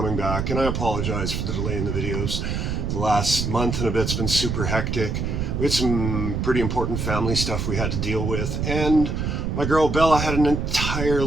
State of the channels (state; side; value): noise; right; rumble, 1 dB below the sound